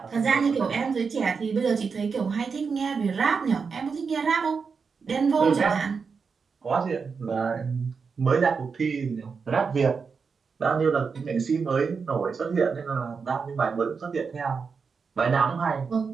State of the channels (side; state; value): left; quieter; 5.4 dB